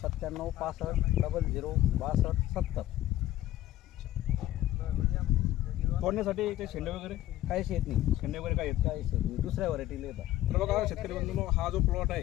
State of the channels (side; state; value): right; quieter; 14.3 dB